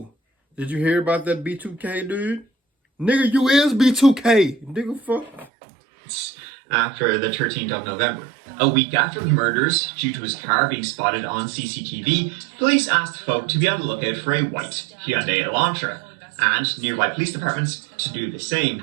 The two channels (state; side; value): drops out; left; at 5.5 s